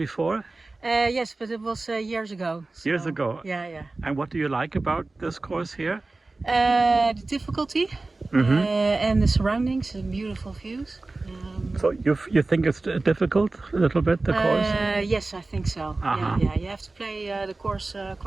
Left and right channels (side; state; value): left; quieter; 3.3 dB